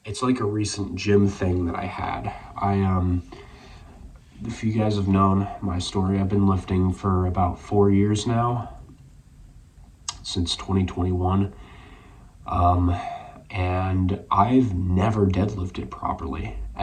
a recent gym thing that I had. If you guys have known my story, I've been lifting for about 4 years now, since 2021. And I've never deadlifted properly,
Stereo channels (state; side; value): identical; both; correlation 1.00